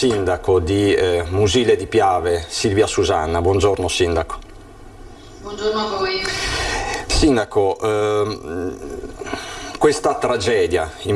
di Musile di Piave, Silvia Susanna. Buongiorno sindaco. Buongiorno a voi. Sindaco, questa tragedia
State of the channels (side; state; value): both; identical; correlation 1.00